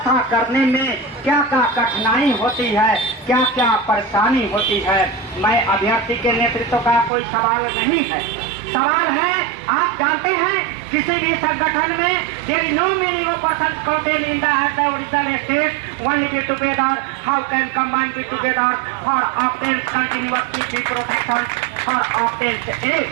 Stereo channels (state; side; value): drops out; left; at 7.1 s